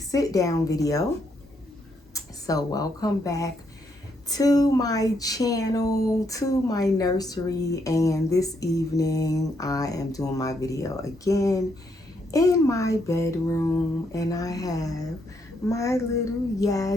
down video. So welcome back to my channel, to my nursery, and this evening I am doing my video again in my bedroom, and I have my little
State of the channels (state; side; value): normal; both; correlation 0.76